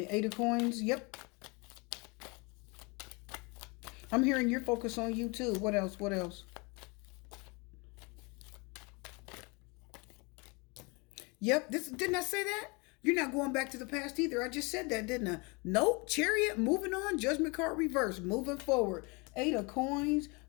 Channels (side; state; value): right; quieter; 29.1 dB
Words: 8 of Coins. Yep. I'm hearing your focus on you too. What else? What else? Yep. Didn't I say that? You're not going back to the past either. I just said that, didn't I? Nope. Chariot, moving on. Judgment card reverse, moving forward. 8 of Coins,